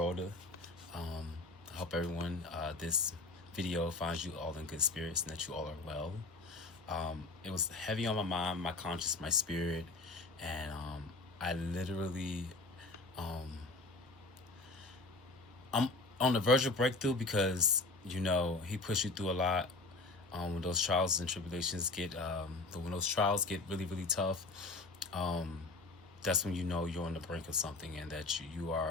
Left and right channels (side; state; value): right; quieter; 3.3 dB